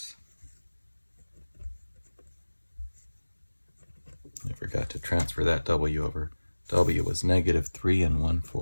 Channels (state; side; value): inverted; both; correlation -1.00